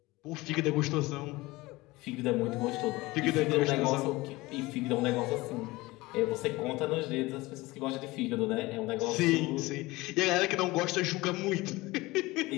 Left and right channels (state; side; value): quieter; right; 20.8 dB